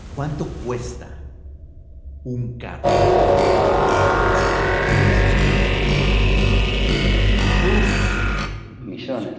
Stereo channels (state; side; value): identical; both; correlation 1.00